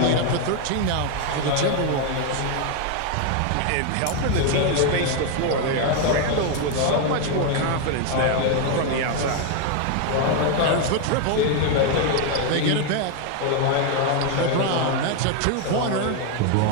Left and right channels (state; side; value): different; both; correlation 0.01